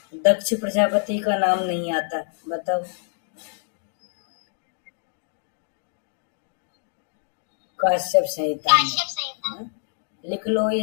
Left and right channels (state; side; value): silent; right; digital silence